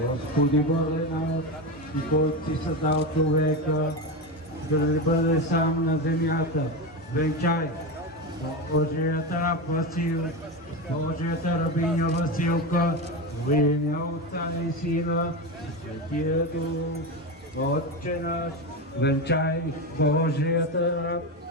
Господи Боже наш, и който си създал човека, за да не бъде сам на земята, венчай Божията раб Васил, Божията рабиня Василка, в имя Отца и Сина, и Светия Дух, Отче наш, венчай Божията раб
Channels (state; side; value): normal; both; correlation 0.18